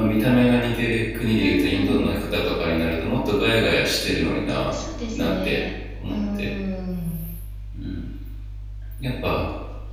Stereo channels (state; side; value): identical; both; correlation 1.00